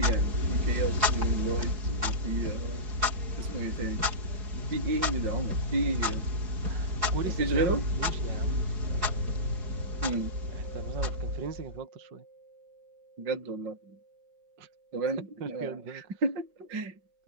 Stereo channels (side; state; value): left; late; 4.7 ms